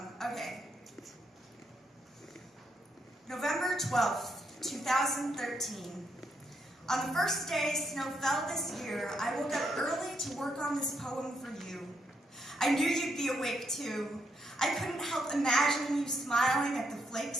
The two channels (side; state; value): both; normal; correlation 0.76